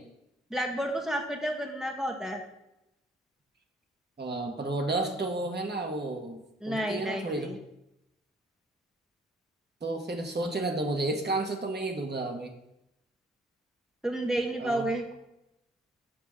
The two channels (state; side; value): normal; both; correlation 0.60